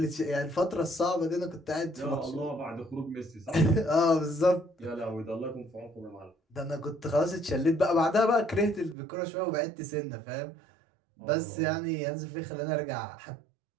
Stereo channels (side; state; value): left; drops out; at 9.0 s